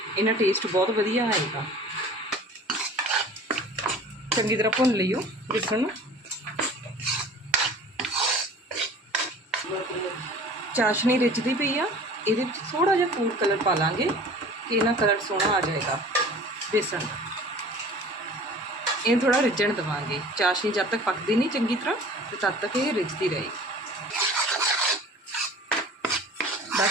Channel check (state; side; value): normal; both; correlation 0.44